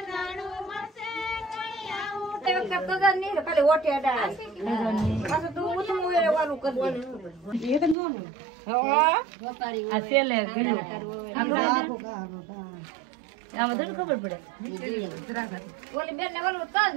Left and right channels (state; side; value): drops out; left; at 8.0 s